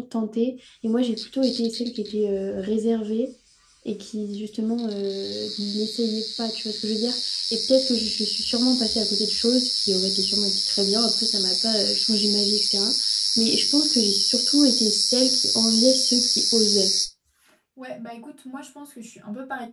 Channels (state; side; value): identical; both; correlation 1.00